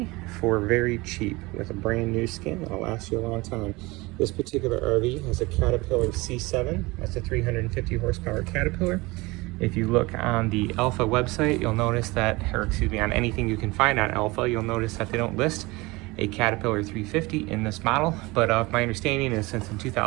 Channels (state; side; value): quieter; left; 22.9 dB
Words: for very cheap with a brand new skin that'll last you a long time. This particular RV has a Caterpillar C7. That's a 350 horsepower Caterpillar. If you look on the Alpha website, you'll notice that, or excuse me, on anything you can find on Alpha, you'll notice that they don't list a Caterpillar 350 in this model. But my understanding is since in